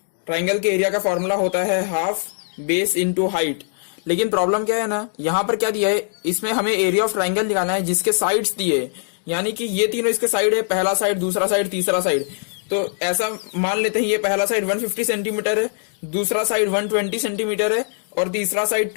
ट्राइंगल के एरिया का फॉर्मूला होता है हाफ बेस इनटू हाइट। लेकिन प्रॉब्लम क्या है ना, यहां पर क्या दिया है, इसमें हमें एरिया ऑफ ट्राइंगल निकालना है जिसके साइड्स दिए, यानी कि ये तीनों इसके साइड है, पहला साइड, दूसरा साइड, तीसरा साइड। तो ऐसा मान लेते हैं ये पहला साइड 150 सेंटीमीटर है, दूसरा साइड 120 सेंटीमीटर है और तीसरा साइड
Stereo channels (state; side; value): silent; right; digital silence